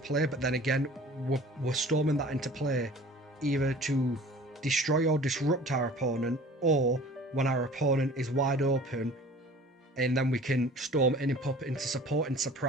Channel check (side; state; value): both; normal; correlation 0.46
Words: But then again, we're storming that into play either to destroy or disrupt our opponent, or when our opponent is wide open, and then we can storm in and pop it into support and